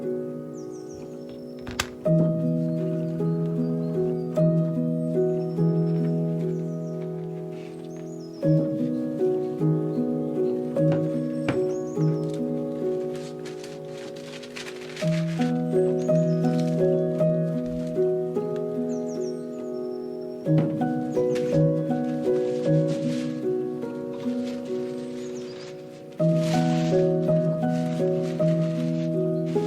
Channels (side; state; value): both; identical; correlation 1.00